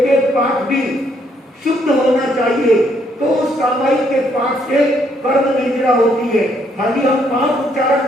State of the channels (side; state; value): both; normal; correlation 0.71